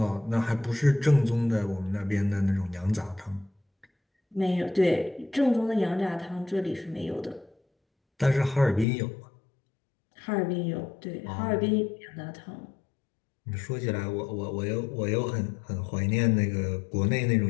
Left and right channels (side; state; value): right; drops out; at 8.8 s